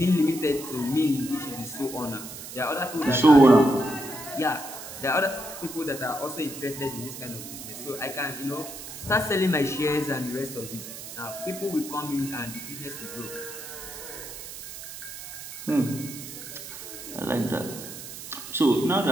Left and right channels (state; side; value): noise; right; hiss, 11 dB below the sound